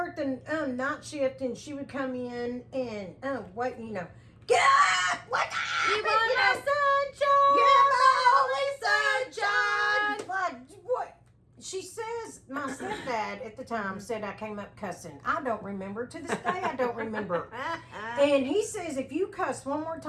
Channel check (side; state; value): both; identical; correlation 1.00